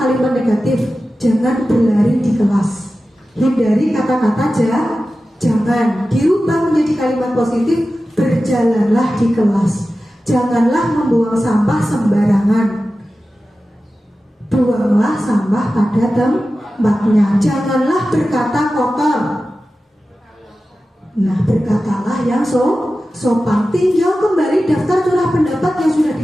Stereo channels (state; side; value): normal; both; correlation 0.94